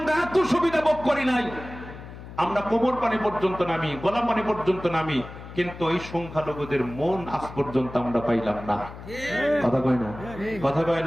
এত সুবিধা ভোগ করি নাই। আমরা কোমর পানি পর্যন্ত নামি, গলা পানি পর্যন্ত নামি, কিন্তু এই সংখ্যালঘুদের মন আজ পর্যন্ত আমরা পাইলাম না। কথা কয় না? কথা কয়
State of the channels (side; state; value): left; noise; hum, 14 dB below the sound